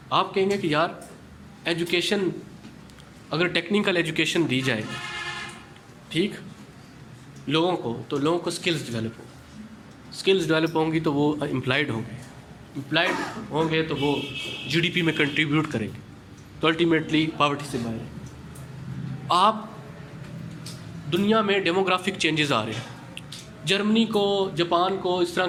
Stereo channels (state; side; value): identical; both; correlation 1.00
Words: आप कहेंगे कि यार एजुकेशन, अगर टेक्निकल एजुकेशन दी जाए ठीक लोगों को, तो लोगों को स्किल्स डेवलप हो, स्किल्स डेवलप होंगी तो वो एम्प्लॉयड होंगे, एम्प्लॉयड होंगे तो वो GDP में कंट्रीब्यूट करेंगे, तो अल्टीमेटली पॉवर्टी से बाहर है। आप दुनिया में डेमोग्राफिक चेंजेस आ रहे हैं, जर्मनी को, जापान को इस तरह